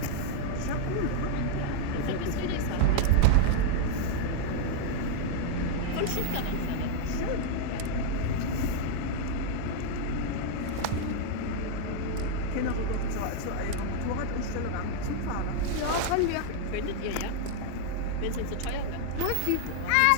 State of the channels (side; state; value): both; different; correlation 0.00